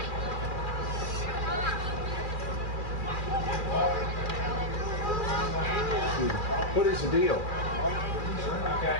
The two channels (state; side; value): late; right; 2.4 ms